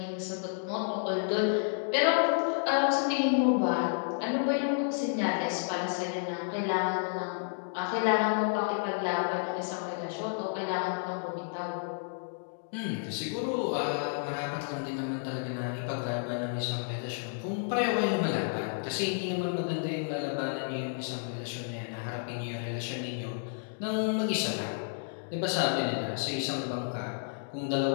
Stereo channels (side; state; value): right; silent; digital silence